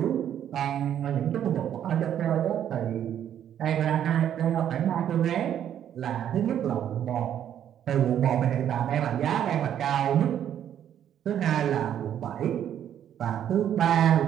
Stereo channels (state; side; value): quieter; left; 10.1 dB